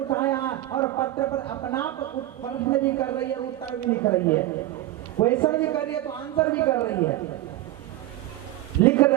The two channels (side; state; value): left; quieter; 15.4 dB